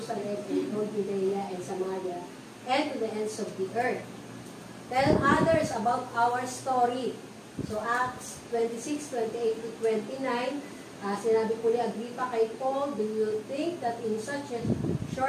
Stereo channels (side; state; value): both; identical; correlation 1.00